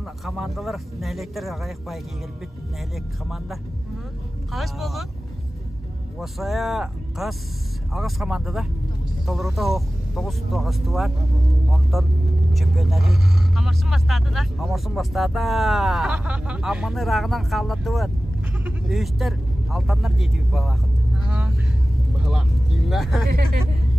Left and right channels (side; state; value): both; normal; correlation 0.96